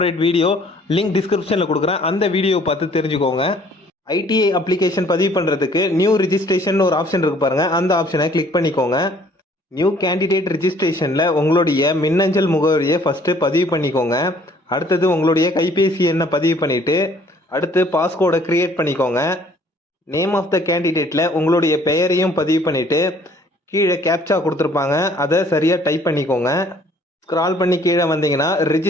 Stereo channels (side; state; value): both; normal; correlation 0.58